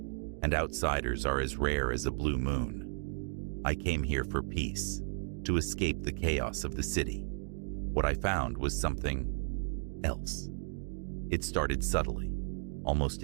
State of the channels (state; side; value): silent; left; digital silence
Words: and outsiders are as rare as a blue moon. I came here for peace, to escape the chaos of the city. What I found was something else. It started subtly, almost